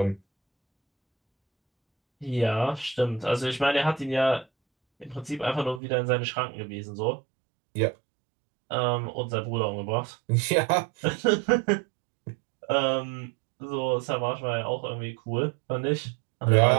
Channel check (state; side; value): drops out; left; at 5.8 s